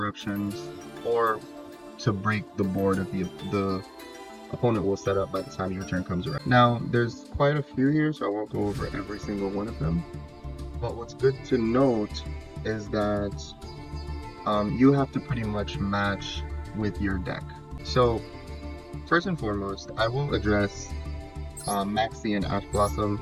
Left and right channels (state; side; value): identical; both; correlation 1.00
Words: or to break the board of the opponent will set up by the time your turn comes around. Now, there's quite a few here, so I won't go over every single one of them. But what's good to note is that you have to pretty much match with your deck. So, first and foremost, I will address Maxi and Ash